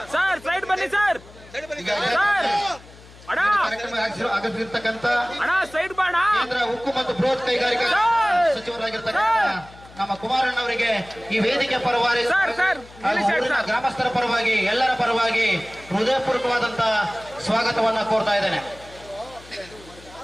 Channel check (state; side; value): noise; left; hum, 21 dB below the sound